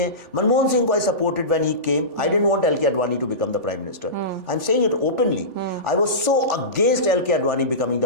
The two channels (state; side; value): late; left; 3.4 ms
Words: मनमोहन सिंह को I supported when he came. I didn't want L.K. Advani to become the prime minister. I'm saying it openly. I was so against L.K. Advani becoming